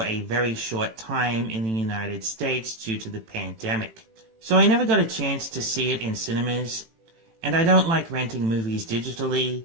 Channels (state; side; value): late; left; 18 ms